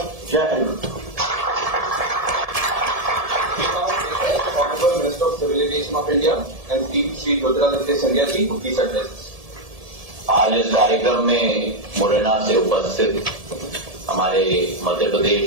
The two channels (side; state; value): left; late; 1.7 ms